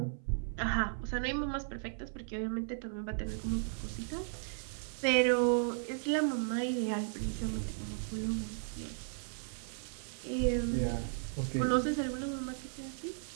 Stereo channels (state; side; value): silent; left; 54 dB below the other